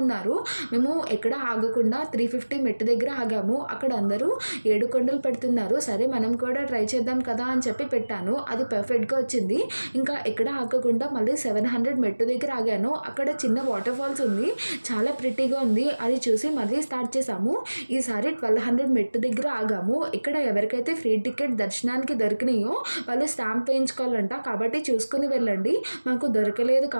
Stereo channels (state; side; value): inverted; both; correlation -1.00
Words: మేము ఎక్కడ ఆగకుండా 350 మెట్టు దగ్గర ఆగాము. అక్కడ అందరూ 7 కొండలు పెడుతున్నారు. సరే మనం కూడా ట్రై చేద్దాం కదా అని చెప్పి పెట్టాను. అది పర్ఫెక్ట్గా వచ్చింది. ఇంకా ఎక్కడ ఆగకుండా మళ్ళీ 700 మెట్టు దగ్గర ఆగాను. అక్కడ చిన్న వాటర్ ఫాల్స్ ఉంది, చాలా ప్రిటీగా ఉంది. అది చూసి మళ్ళీ స్టార్ట్ చేసాము. ఈసారి 1200 మెట్టు దగ్గర ఆగాము. ఇక్కడ ఎవరికైతే ఫ్రీ టికెట్ దర్శనానికి దొరికినాయో వాళ్ళు స్టాంప్ వేయించుకోవాలంట, కాబట్టి చూసుకుని వెళ్ళండి. మాకు దొరకలేదు